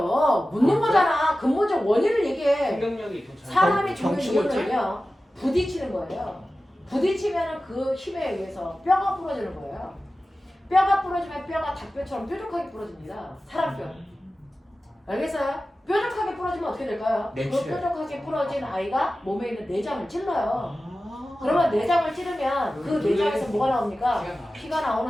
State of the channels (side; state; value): both; normal; correlation 0.95